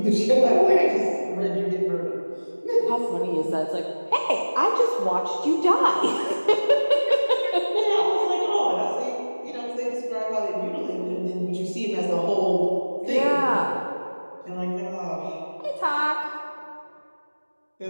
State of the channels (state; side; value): inverted; both; correlation -1.00